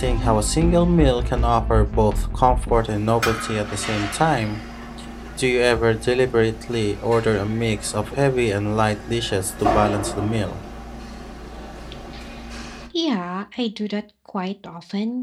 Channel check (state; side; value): identical; both; correlation 1.00